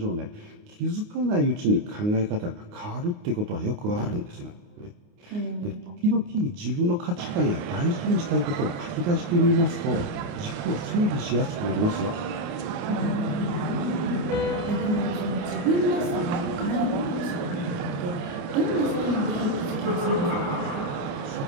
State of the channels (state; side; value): late; left; 29 ms